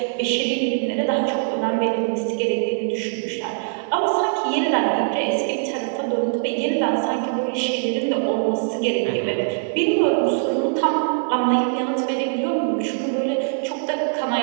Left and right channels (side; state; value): left; silent; digital silence